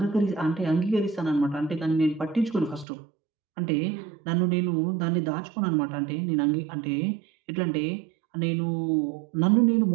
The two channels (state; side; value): drops out; left; at 2.9 s